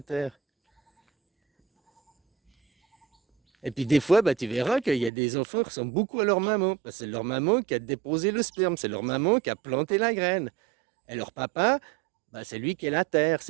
terre. Et puis des fois, bah, tu verras qu'il y a des enfants qui ressemblent beaucoup à leur maman. Parce que c'est leur maman qui a déposé le sperme, c'est leur maman qui a planté la graine. Et leur papa, bah, c'est lui qui est la terre,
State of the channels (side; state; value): left; drops out; at 5.1 s